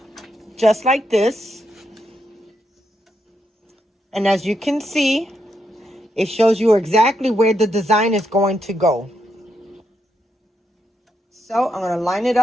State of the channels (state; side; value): normal; both; correlation 0.81